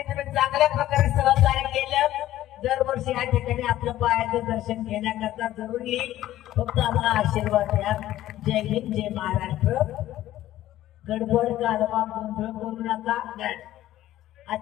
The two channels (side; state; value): right; quieter; 14.0 dB